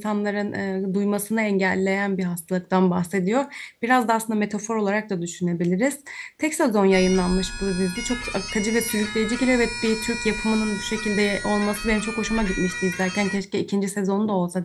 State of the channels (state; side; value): identical; both; correlation 1.00